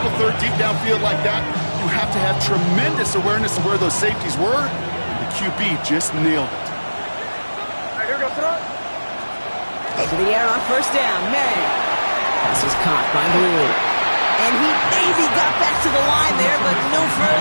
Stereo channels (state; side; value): inverted; both; correlation -1.00